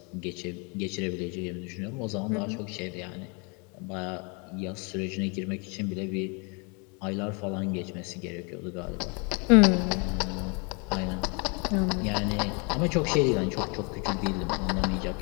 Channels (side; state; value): right; quieter; 33.2 dB